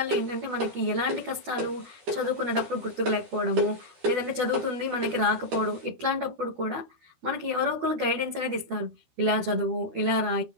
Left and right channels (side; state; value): left; late; 13 ms